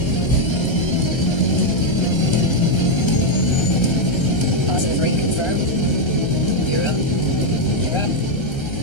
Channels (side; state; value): right; late; 1.3 ms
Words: Positive rate confirmed. You're up. You're up.